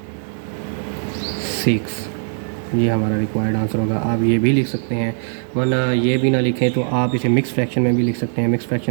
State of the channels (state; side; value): silent; left; digital silence